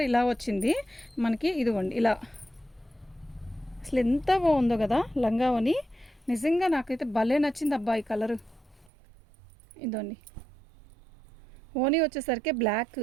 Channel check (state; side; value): drops out; left; at 8.9 s